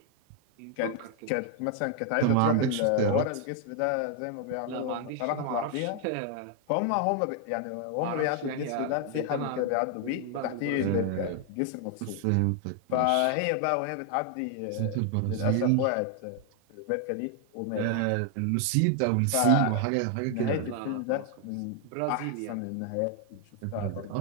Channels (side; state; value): both; different; correlation 0.00